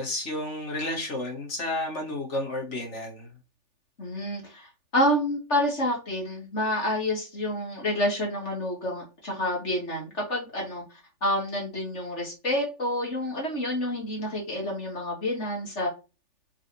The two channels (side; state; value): right; late; 3.4 ms